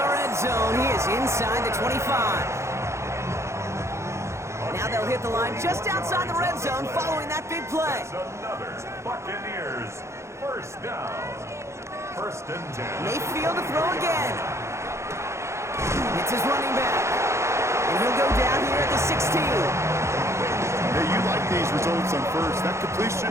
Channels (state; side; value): late; left; 0.14 ms